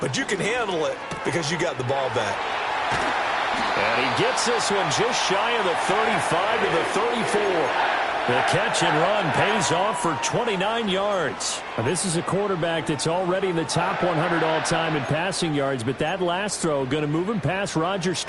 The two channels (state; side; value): identical; both; correlation 1.00